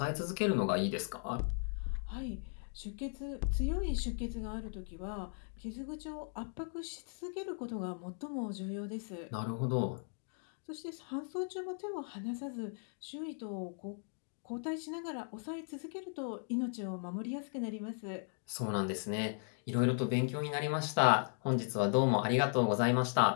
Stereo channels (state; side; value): silent; right; 53 dB below the other